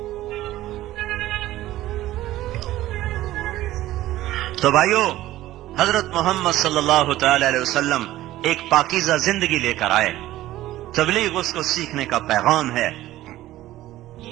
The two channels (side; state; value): left; quieter; 15.3 dB